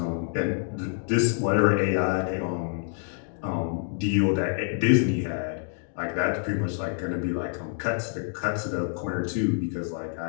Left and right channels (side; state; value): right; silent; 60 dB below the other